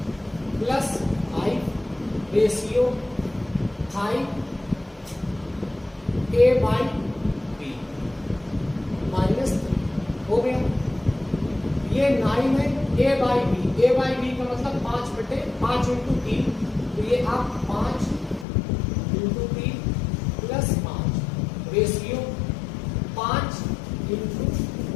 plus 5 ratio 5a by b minus 3 हो गया। ये 9 है a बाई बी का मतलब 5 बटे 5 इंटू 3, तो ये आप 5 इंटू 3 प्लस 5 रेशियो 5 इंटू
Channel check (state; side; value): drops out; right; at 18.4 s